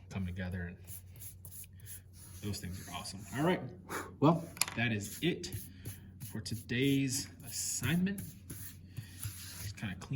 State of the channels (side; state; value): both; identical; correlation 1.00